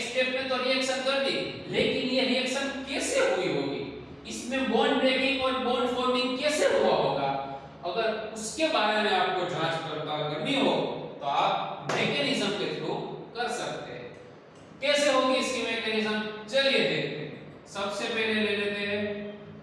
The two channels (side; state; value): both; identical; correlation 1.00